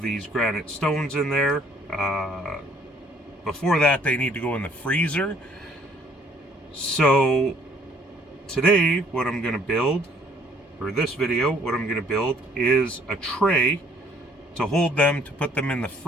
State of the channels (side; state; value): both; normal; correlation 0.61